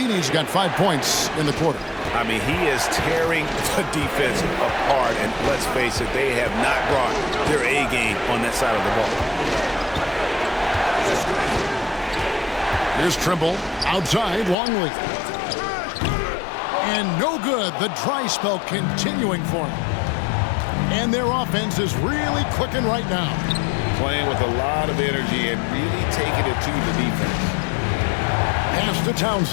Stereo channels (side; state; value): right; drops out; at 14.6 s